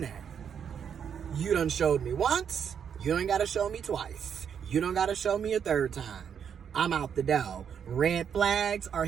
that. You done showed me once. You don't got to show me twice. You don't got to show me a third time. I'm out the door. Red flags are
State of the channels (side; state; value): left; quieter; 7.8 dB